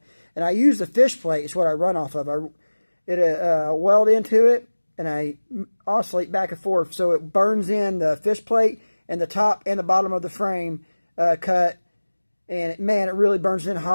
And I use the fish plate, it's what I run off of. I weld into it, and I oscillate back and forth, so it burns in the fish plate and the top and the bottom of the frame cut. And man, it really burns in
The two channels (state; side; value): inverted; both; correlation -1.00